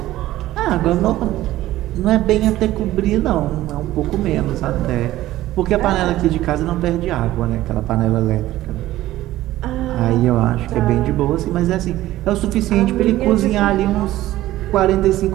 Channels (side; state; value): left; quieter; 15.3 dB